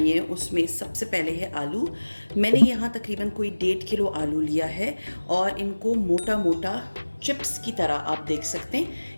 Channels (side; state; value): both; inverted; correlation -1.00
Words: उसमें सबसे पहले है आलू। मैंने यहाँ तकरीबन कोई 1.5 किलो आलू लिया है और इनको मोटा मोटा चिप्स की तरह आप देख सकते